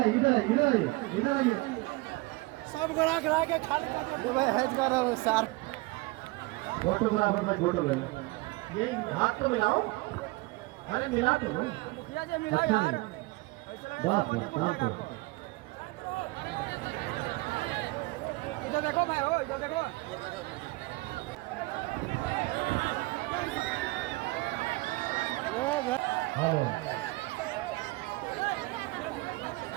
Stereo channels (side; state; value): left; quieter; 22.9 dB